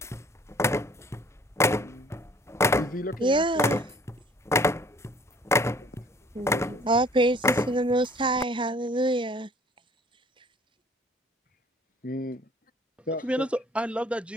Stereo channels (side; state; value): both; normal; correlation 0.54